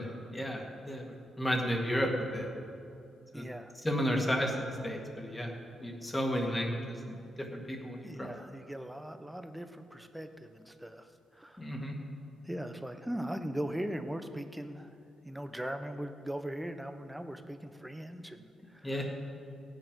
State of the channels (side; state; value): both; normal; correlation 0.87